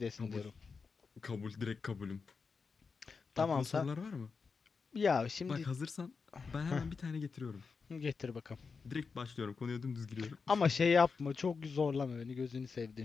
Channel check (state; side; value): quieter; right; 5.0 dB